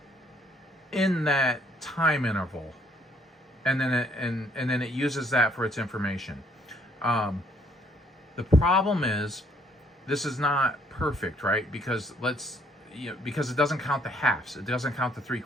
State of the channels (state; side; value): normal; both; correlation 0.66